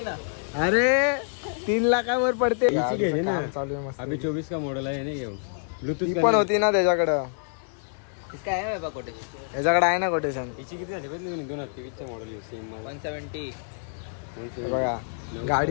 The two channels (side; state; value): right; silent; 60 dB below the other